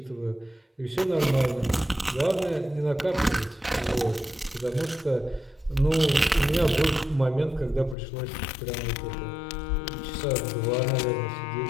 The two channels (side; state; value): right; drops out; at 8.0 s